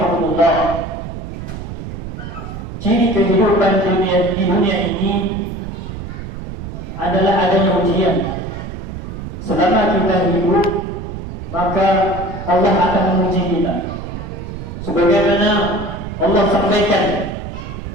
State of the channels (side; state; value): right; noise; rumble, 8 dB below the sound